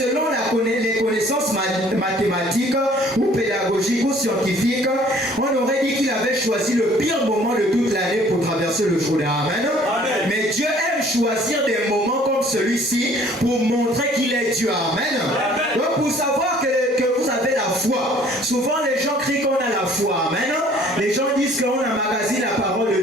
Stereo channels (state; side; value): normal; both; correlation 0.55